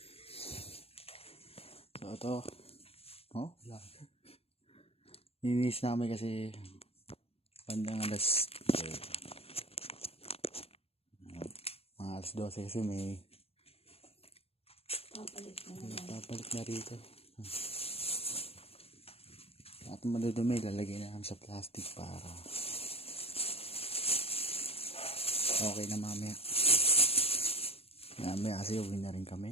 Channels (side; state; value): right; late; 0.29 ms